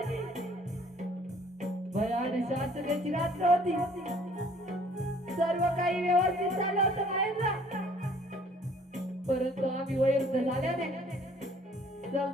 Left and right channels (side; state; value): both; normal; correlation 0.57